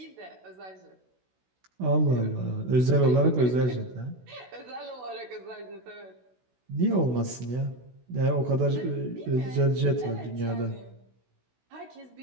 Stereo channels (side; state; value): left; late; 16 ms